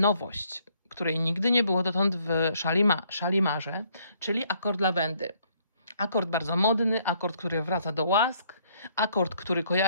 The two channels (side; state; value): both; inverted; correlation -0.67